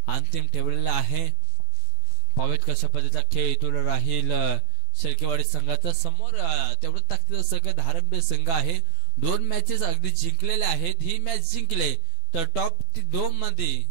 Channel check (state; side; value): late; right; 12 ms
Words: ठेवलेला आहे. पावेत कशा पद्धतीचा खेळ इथून राहील शेळकेवाडी संघाचा. समोर तेवढं ताकदीचा संघ धारंबे संघ आहे. 2 मॅचेस अगदी जिंकलेले आहेत. ही मॅच जिंकले तर टॉप 2 मध्ये